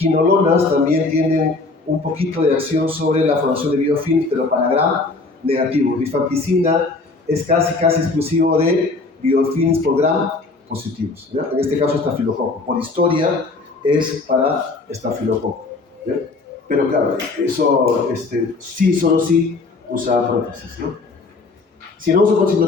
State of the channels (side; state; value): right; quieter; 3.7 dB